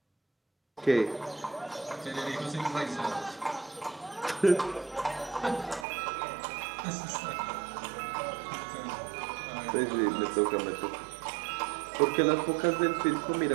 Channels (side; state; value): left; drops out; at 5.9 s